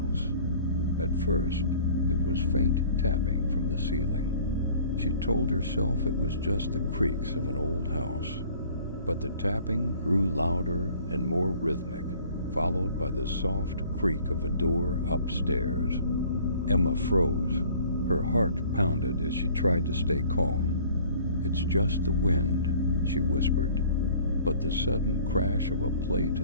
At first, it was faint tapping from the ceiling. She told herself it was just the creaks of an old house. But the tapping grew louder and more rhythmic, followed by the soft creak of a door upstairs. Emma froze. Her heart pounded as she tried to stay calm. "It's just the wind," she whispered. But the sudden crash of a plate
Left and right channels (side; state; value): both; inverted; correlation -0.51